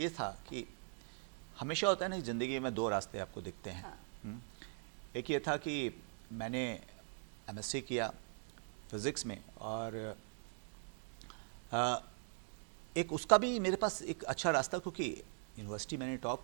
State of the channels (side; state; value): left; silent; 50 dB below the other